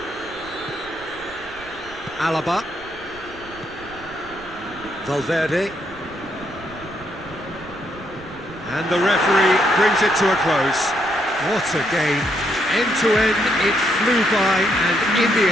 Alaba. Valverde. And the referee brings it to a close. What a game. End to end, it flew by, and in the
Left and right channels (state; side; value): noise; right; rumble, 21 dB below the sound